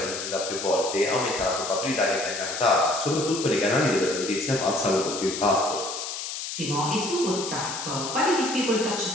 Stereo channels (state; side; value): noise; left; hiss, 6 dB below the sound